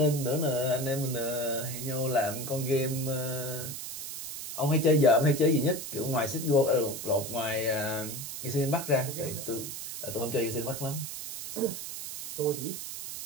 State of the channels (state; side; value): noise; right; hiss, 7 dB below the sound